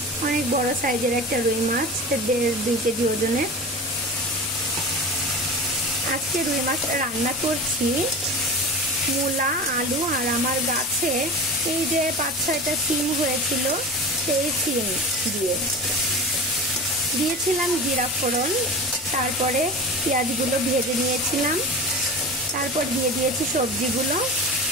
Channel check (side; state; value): both; normal; correlation 0.31